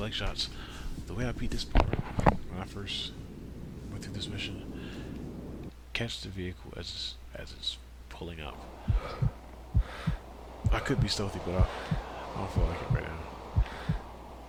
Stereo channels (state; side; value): identical; both; correlation 1.00